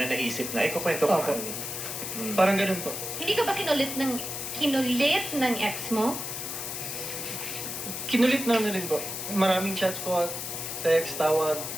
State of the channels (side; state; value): left; noise; hiss, 5 dB below the sound